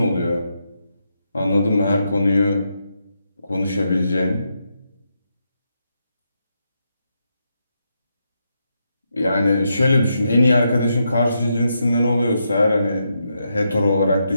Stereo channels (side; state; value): both; inverted; correlation -0.82